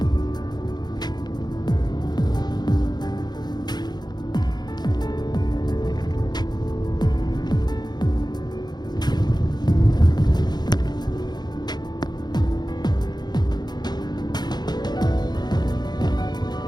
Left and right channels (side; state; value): right; late; 0.20 ms